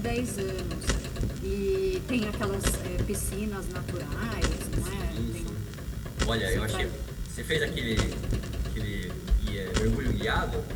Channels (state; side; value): identical; both; correlation 1.00